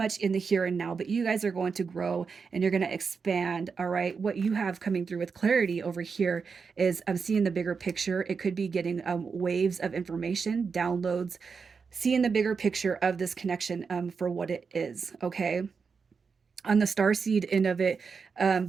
in the here and now, but you guys are going to grow and you're going to expand. All right. What you have coming through with clarity over here is I'm seeing the bigger picture. It could be getting waves of information, downloads, seeing the bigger picture of this connection for what it is. Okay. On the star seed end of it,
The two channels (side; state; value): left; quieter; 5.4 dB